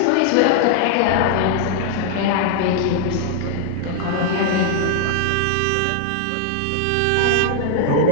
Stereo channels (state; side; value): different; both; correlation 0.00